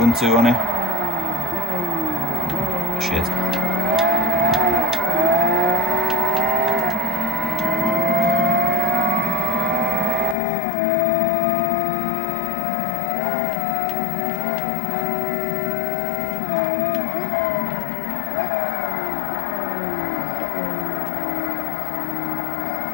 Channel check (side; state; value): right; drops out; at 10.4 s